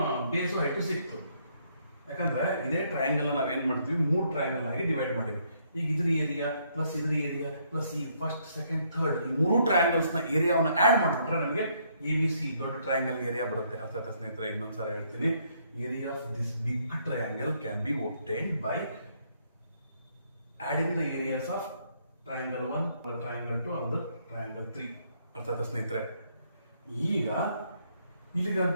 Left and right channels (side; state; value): both; inverted; correlation -0.70